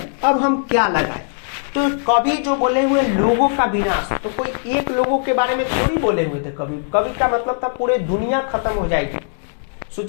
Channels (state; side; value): silent; right; 66 dB below the other